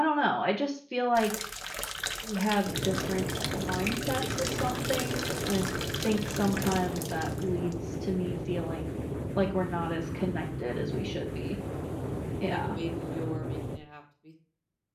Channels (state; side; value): identical; both; correlation 1.00